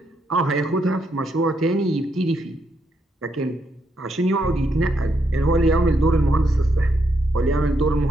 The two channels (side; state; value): both; normal; correlation 0.78